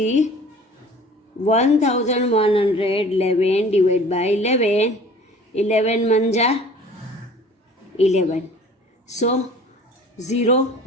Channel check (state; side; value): normal; both; correlation 0.47